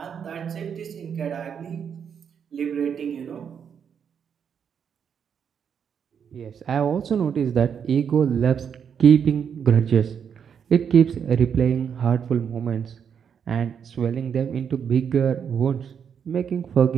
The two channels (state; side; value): quieter; left; 7.5 dB